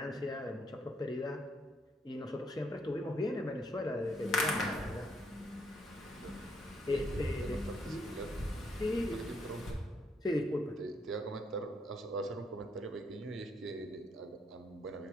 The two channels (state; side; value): normal; both; correlation 0.73